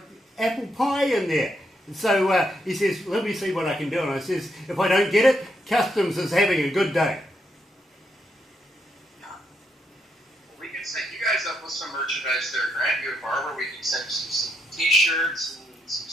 apple pie in there. So he says, let me see what I can do. And I says, if I don't get it, Customs is having a good day. We can set you guys up with some merchandise there, Grant. You and Barbara, we can send you some t-shirts and some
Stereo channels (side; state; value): both; normal; correlation 0.78